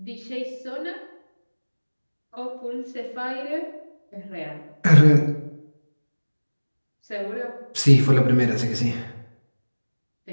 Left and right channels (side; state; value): both; inverted; correlation -1.00